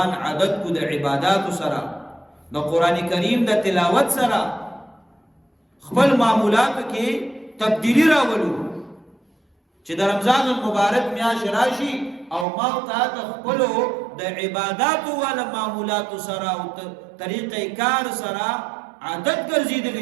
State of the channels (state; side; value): drops out; left; at 12.5 s